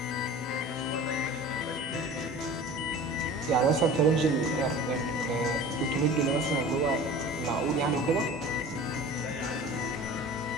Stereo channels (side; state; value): both; normal; correlation 0.39